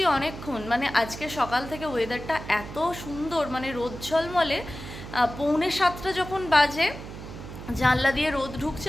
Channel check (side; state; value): right; noise; hum, 11 dB below the sound